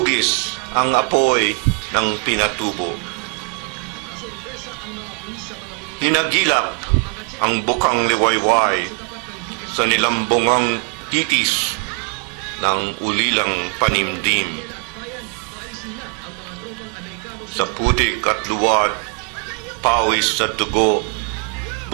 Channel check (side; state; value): left; quieter; 37.0 dB